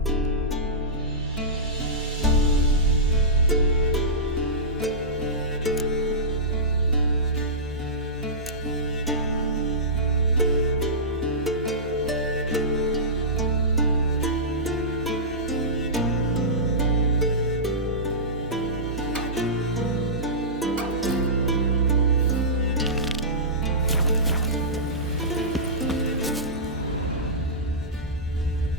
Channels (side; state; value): both; normal; correlation -0.18